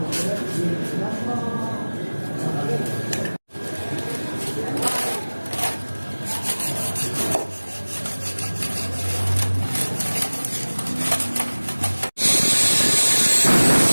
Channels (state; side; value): inverted; both; correlation -1.00